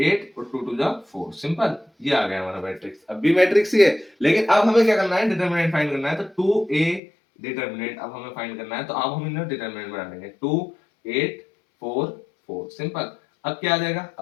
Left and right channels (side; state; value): right; drops out; at 7.0 s